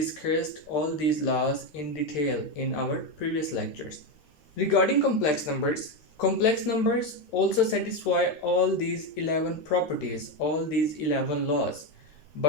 all these laws in detail in our previous lectures. Regarding complex numbers also satisfy all these 11 properties, all these 11 laws.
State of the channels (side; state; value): right; late; 13 ms